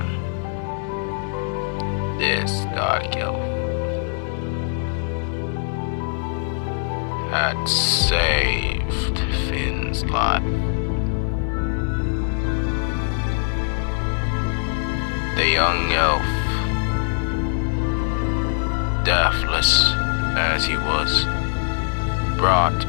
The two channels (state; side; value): silent; right; 64 dB below the other